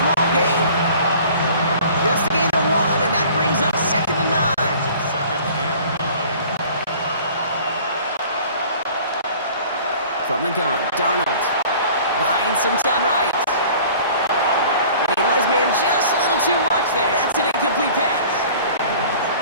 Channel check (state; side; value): inverted; both; correlation -0.47